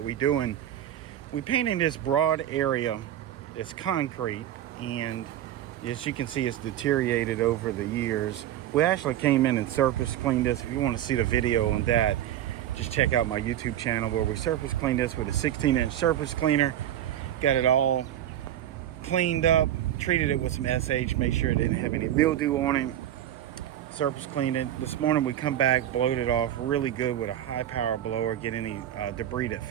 we're doing. We're painting this broad area. It's concrete, and as you can see, it's deteriorated over the years. We actually came in and surface cleaned this. If you want to see the video on that, just check out my YouTube channel where we surface cleaned this with a 16-inch surface cleaner. Got it all cleaned up, treated it with some SH, make sure it didn't have any mildew on it. Surface cleaned it. This morning we come back, blowed it off really good with a high power blower, get any debris that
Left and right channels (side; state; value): left; quieter; 11.7 dB